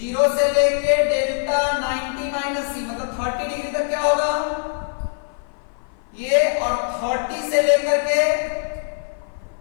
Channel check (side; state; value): right; silent; 56 dB below the other